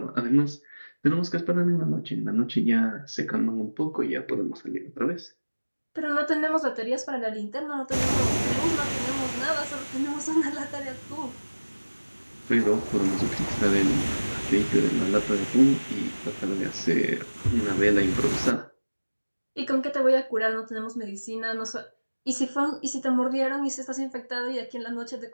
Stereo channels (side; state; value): both; inverted; correlation -1.00